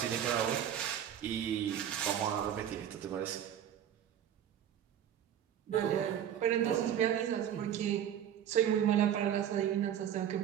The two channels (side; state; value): left; quieter; 10.0 dB